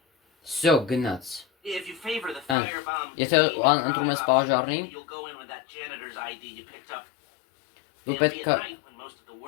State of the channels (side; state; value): right; drops out; at 2.6 s